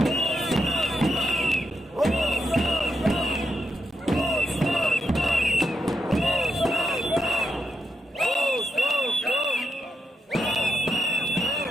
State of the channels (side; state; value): both; normal; correlation 0.84